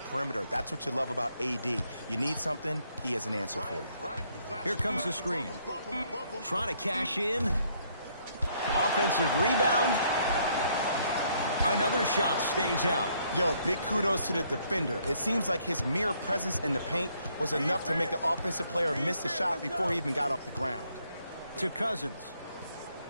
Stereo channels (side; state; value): both; inverted; correlation -0.69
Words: That's what you love about AD. You need something, he has an answer for you. Here comes the screen. Trying to cash in. Offensive rebound. Another shot stays out. Yo, big kudos to the defender. It seems like his mere presence in the paint was enough to make the offensive player miss the shot before he even got off the ground. To Cousins.